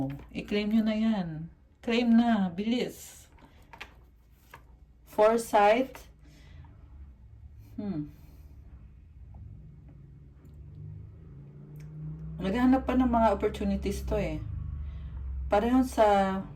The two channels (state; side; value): identical; both; correlation 1.00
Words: i-claim nyo na yan. Claim na, bilis. Foresight. Naghahanap pa ng mga opportunities to eh. Pareho sa